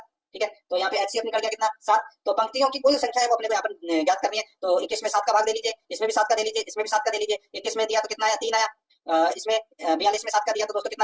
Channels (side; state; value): both; identical; correlation 1.00